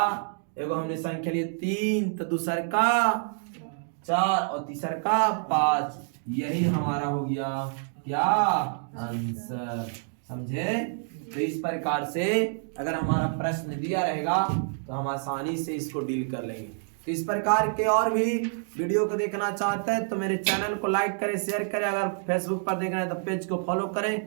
एगो हमने संख्या लिए 3 तो दूसर का 4 और तीसर का 5। यही हमारा हो गया क्या आंसर, समझे। तो इस प्रकार से अगर हमारा प्रश्न दिया रहेगा तो हम आसानी से इसको डील कर लेंगे। तो इस प्रकार के और भी वीडियो को देखना चाहते हैं तो मेरे चैनल को लाइक करें, शेयर करें। अगर फेसबुक पर देख रहे हैं तो पेज को फॉलो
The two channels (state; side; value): silent; left; 60 dB below the other